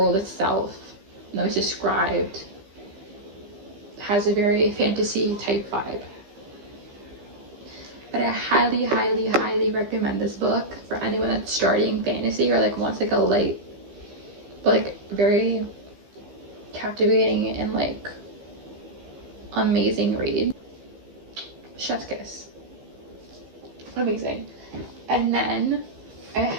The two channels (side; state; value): left; late; 15 ms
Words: itself though it's described, has a very fantasy type vibe. But I highly, highly, highly recommend this book for anyone that's starting fantasy or like wants like a light, but like very captivating and like amazing read. Chef's kiss. Amazing. And then